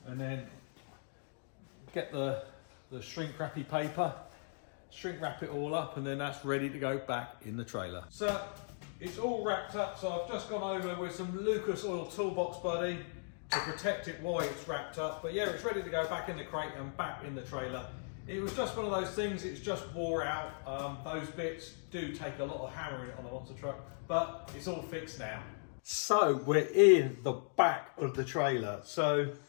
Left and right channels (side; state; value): right; silent; digital silence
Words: and then get the shrink wrappy paper, shrink wrap it all up, and then that's ready to go back in the trailer. So it's all wrapped up, so I've just gone over with some Lucas Oil Toolbox Buddy to protect it while it's wrapped up. But yeah, it's ready to go back in the crate and back in the trailer. It was just one of those things, it's just wore out. Those bits do take a lot of hammering on a monster truck, but it's all fixed now. So we're in the back of the trailer. So